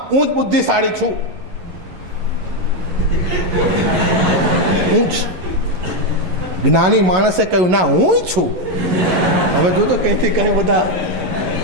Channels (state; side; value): late; left; 11 ms